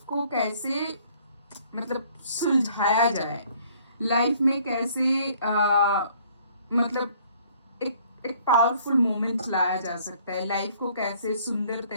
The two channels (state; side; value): inverted; both; correlation -0.60